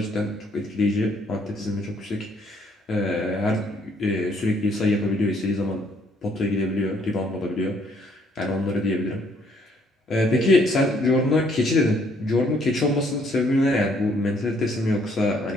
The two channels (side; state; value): both; normal; correlation 0.66